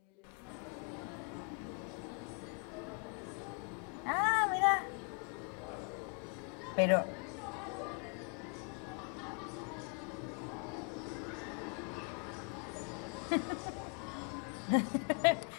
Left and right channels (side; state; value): right; quieter; 38.4 dB